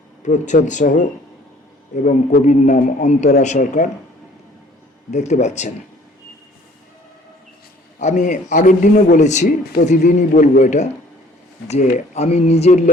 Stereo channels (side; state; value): both; normal; correlation 0.55